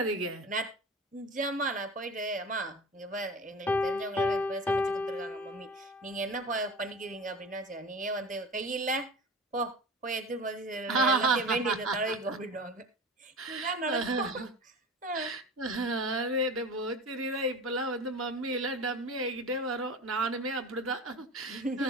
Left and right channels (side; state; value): both; normal; correlation 0.33